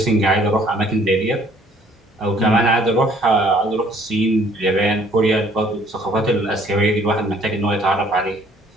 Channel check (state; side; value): normal; both; correlation 0.60